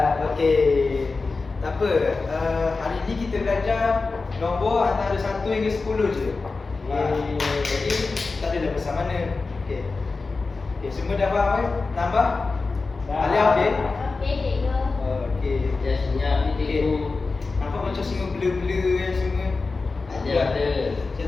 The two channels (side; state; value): right; quieter; 4.0 dB